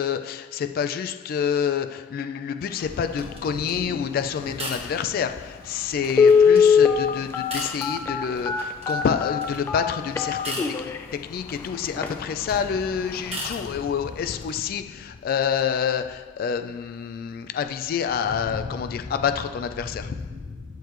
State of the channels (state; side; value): quieter; right; 6.3 dB